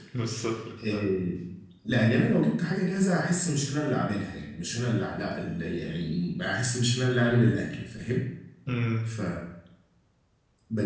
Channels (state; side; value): identical; both; correlation 1.00